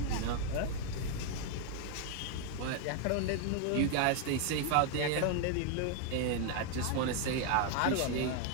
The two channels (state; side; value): different; both; correlation 0.01